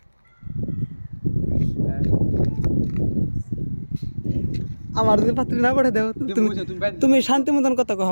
আমার যদি পাত্রী না পাঠিয়ে দাও তুমি শান্তি মতন কথা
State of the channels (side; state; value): both; inverted; correlation -1.00